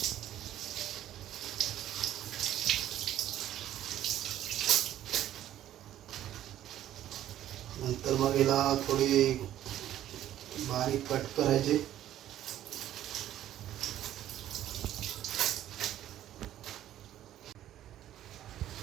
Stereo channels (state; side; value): quieter; left; 12.3 dB